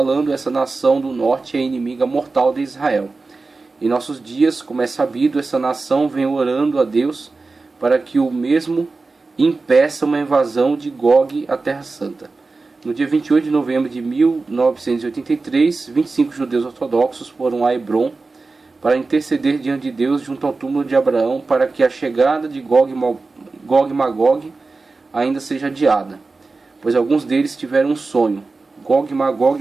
essa nação do norte é inimiga mortal de Israel. Em nossos dias, como é sabido, essa nação vem orando a Deus para que o mesmo impeça uma invasão de Gog à Terra Santa. No dia 28 de novembro de 1983, 25 judeus ortodoxos foram a Hebrom para interceder diante de Deus junto ao túmulo de Abraão para que a chegada de Gog e Magog ainda seja adiada, pois alguns deles tiveram um sonho. Gog e Magog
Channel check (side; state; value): left; quieter; 3.8 dB